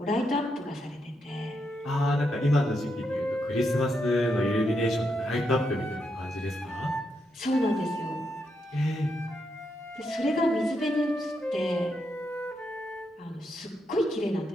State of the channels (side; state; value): both; normal; correlation 0.81